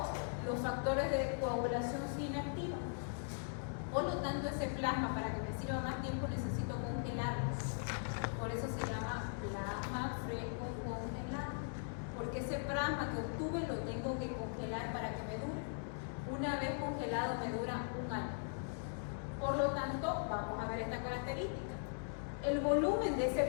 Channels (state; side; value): silent; right; digital silence